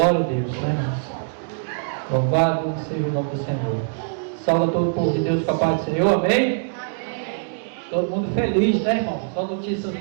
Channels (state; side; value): silent; left; digital silence